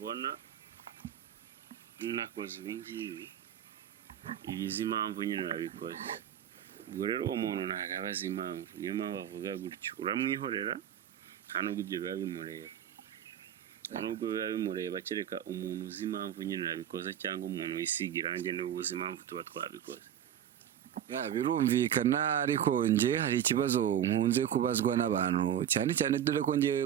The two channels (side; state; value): left; quieter; 10.1 dB